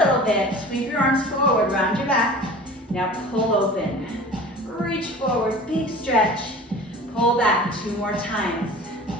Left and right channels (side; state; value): both; normal; correlation 0.41